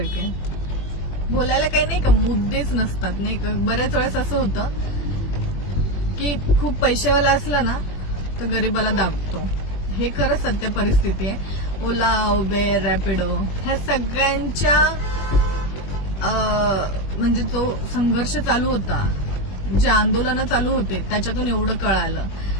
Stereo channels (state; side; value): late; right; 21 ms